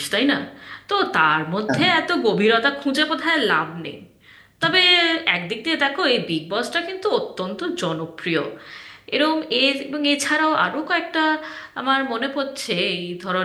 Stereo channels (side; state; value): both; identical; correlation 1.00